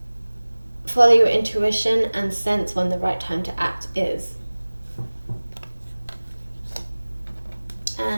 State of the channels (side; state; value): both; inverted; correlation -1.00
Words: follow your intuition and sense when the right time to act is.